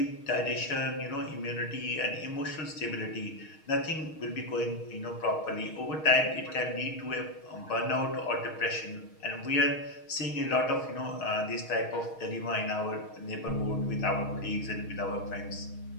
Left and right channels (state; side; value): late; right; 6.4 ms